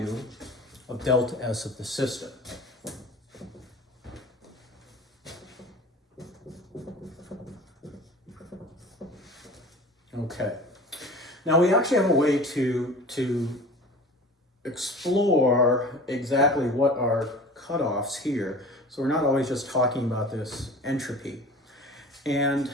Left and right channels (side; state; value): both; normal; correlation 0.40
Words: of delta S of the system. Okay. Now we actually have a way to explore exactly what are cutoffs here. So we're not always just talking about this entropy. And